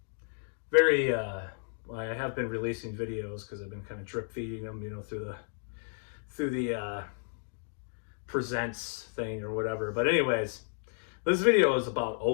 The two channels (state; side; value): silent; right; 56 dB below the other